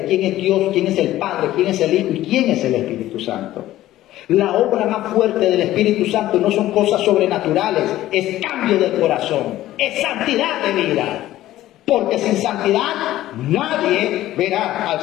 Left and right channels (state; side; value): quieter; right; 14.6 dB